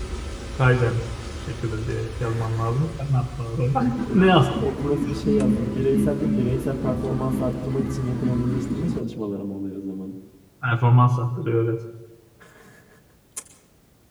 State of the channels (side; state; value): both; identical; correlation 1.00